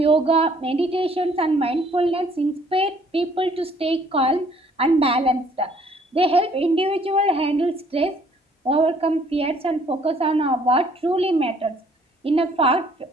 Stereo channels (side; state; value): both; normal; correlation 0.61